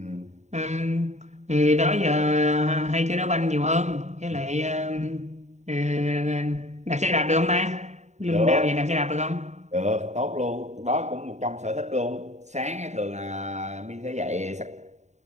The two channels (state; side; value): late; left; 0.34 ms